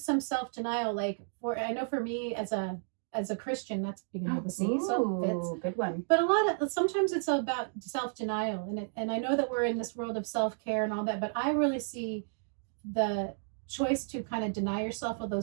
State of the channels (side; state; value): left; silent; digital silence